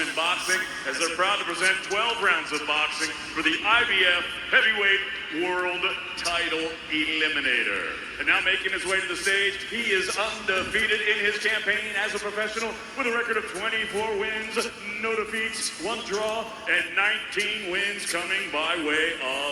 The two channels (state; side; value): identical; both; correlation 1.00